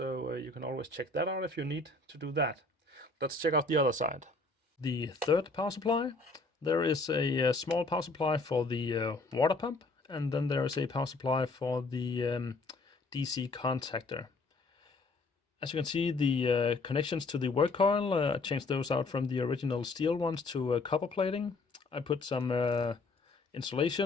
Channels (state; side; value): quieter; right; 3.4 dB